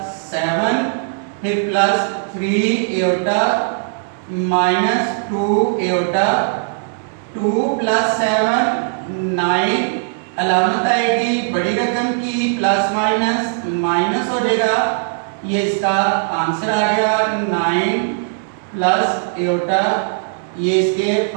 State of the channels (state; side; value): silent; left; digital silence